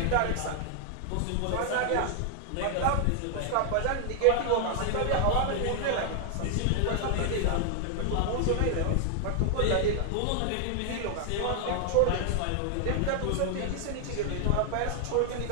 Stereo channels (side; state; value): both; different; correlation 0.00